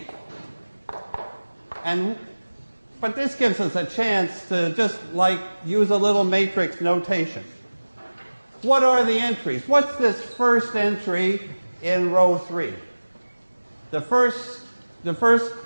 But this gives us a chance to just use a little matrix notation. What are the entries? What's this first entry in row 3?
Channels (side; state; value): both; inverted; correlation -1.00